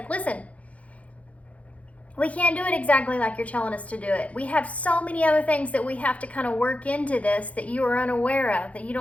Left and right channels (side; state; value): right; late; 0.066 ms